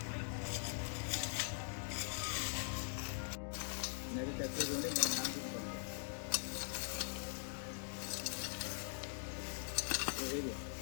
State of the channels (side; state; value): right; silent; digital silence